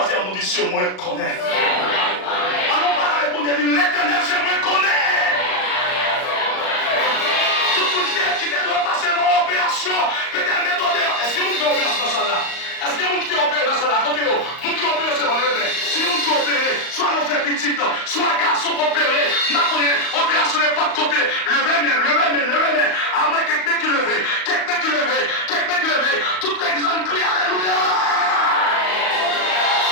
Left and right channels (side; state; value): right; late; 38 ms